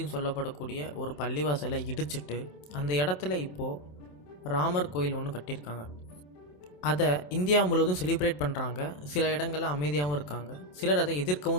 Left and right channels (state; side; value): late; right; 27 ms